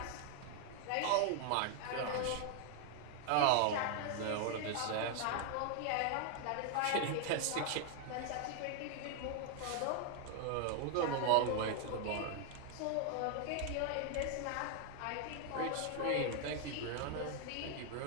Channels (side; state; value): both; different; correlation 0.00